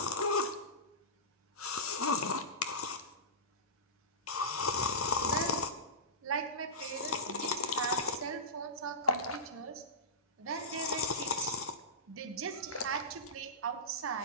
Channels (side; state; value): both; normal; correlation -0.17